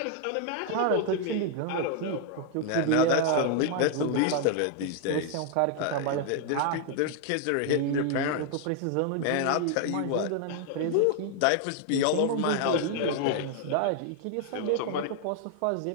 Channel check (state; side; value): different; both; correlation 0.00